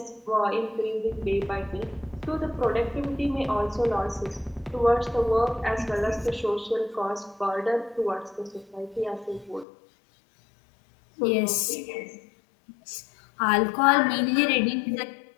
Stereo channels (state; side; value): drops out; right; at 9.7 s